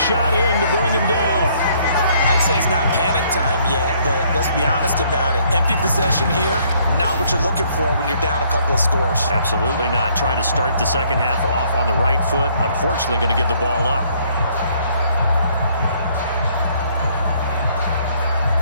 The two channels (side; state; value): both; inverted; correlation -0.65